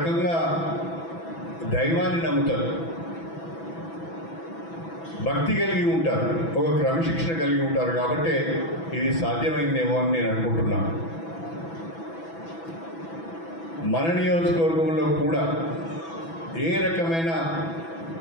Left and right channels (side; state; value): right; late; 6.1 ms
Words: దైవాన్ని నమ్ముతారు, భక్తి కలిగి ఉంటారు, ఒక క్రమశిక్షణ కలిగి ఉంటారు. కాబట్టి ఇది సాధ్యమైందేమో అని నేను అనుకుంటున్నాను. మన నియోజకవర్గంలో కూడా ఏ రకమైన